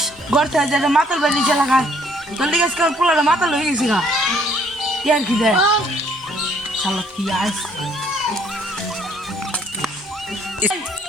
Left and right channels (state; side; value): normal; both; correlation 0.63